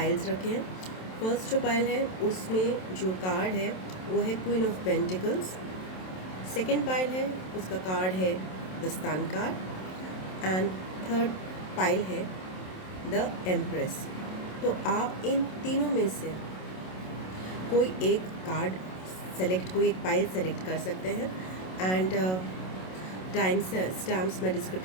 रखे हैं। फर्स्ट जो पाइल है उसमें जो कार्ड है वो है queen of pentacles. Second pile है उसका कार्ड है the sun card and third pile है द एम्प्रेस। तो आप इन तीनों में से कोई एक कार्ड सेलेक्ट, कोई एक पाइल सेलेक्ट कर सकते हैं एंड स्टैम्प्स मैं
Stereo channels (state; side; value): late; right; 27 ms